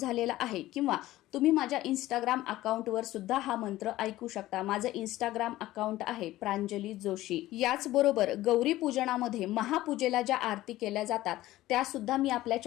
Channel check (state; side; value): quieter; right; 16.0 dB